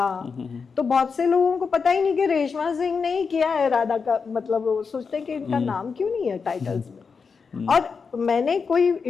तो बहुत से लोगों को पता ही नहीं कि रेशमा सिंह ने ही किया है राधा का, मतलब वो सोचते हैं कि इनका नाम क्यों नहीं है टाइटल्स में। और मैंने कोई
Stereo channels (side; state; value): right; quieter; 5.4 dB